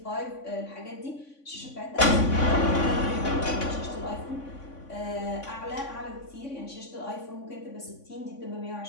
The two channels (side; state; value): right; late; 3.5 ms